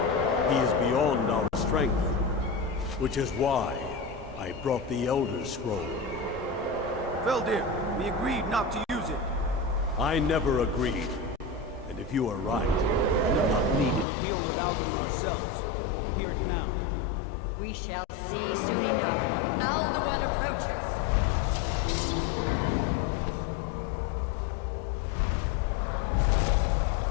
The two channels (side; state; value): right; drops out; at 14.1 s